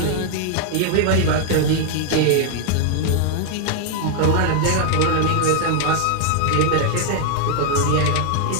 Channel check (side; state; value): both; different; correlation 0.00